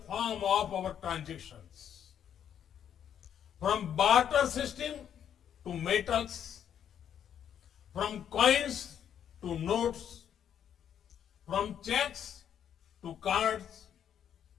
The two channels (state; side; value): quieter; right; 9.2 dB